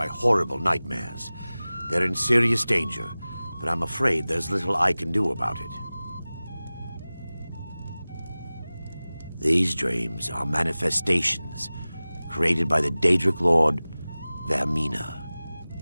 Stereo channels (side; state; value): both; inverted; correlation -0.98